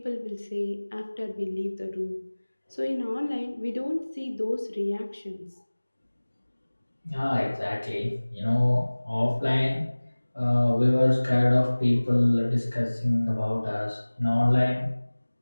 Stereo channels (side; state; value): both; inverted; correlation -1.00